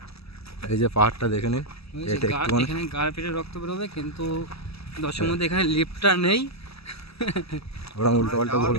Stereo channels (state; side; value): late; right; 0.78 ms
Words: এই যে পাহাড়টা দেখে নিন, এটা একটুখানি এখানে গাড় পেটে রক্ত বেরোবে, কিন্তু দশের মধ্যে এখানে লিফটটা নেই। ওরা উল্টো পাল্টা